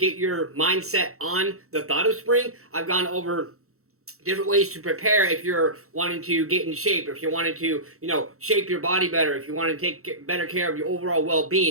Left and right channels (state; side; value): late; left; 0.63 ms